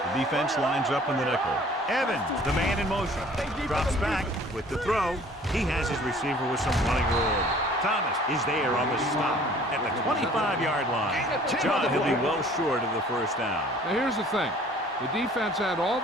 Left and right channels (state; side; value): normal; both; correlation 0.52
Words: The defense lines up in the nickel. Evans, the man in motion. Drops back with the throw. He has his receiver with some running room. Thomas is there on the stop at the 25-yard line. John, he'll be well short of the 1st down. Now here's the thing. The defense had all